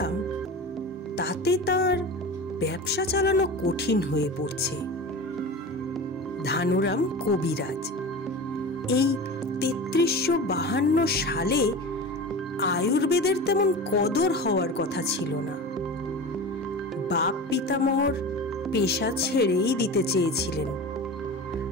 তাতে তার ব্যবসা চালানো কঠিন হয়ে পড়ছে। ধানুরাম কবিরাজ। এই ৩৩৫২ সালে আয়ুর্বেদের তেমন কদর হওয়ার কথা ছিল না। বাপ পিতামহর পেশা ছেড়েই দিতে চেয়েছিলেন,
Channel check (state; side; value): normal; both; correlation 0.30